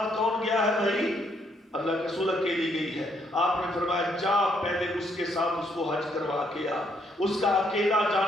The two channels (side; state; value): both; normal; correlation 0.71